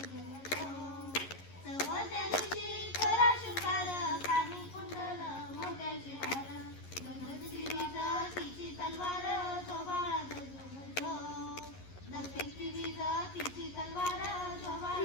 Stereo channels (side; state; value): right; late; 11 ms